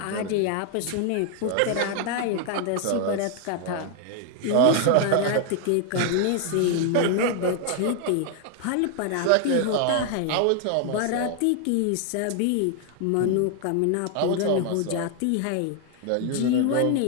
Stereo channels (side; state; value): both; different; correlation 0.00